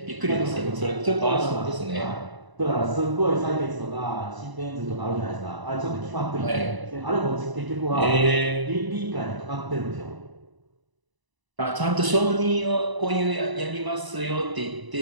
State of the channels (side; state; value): left; late; 1.0 ms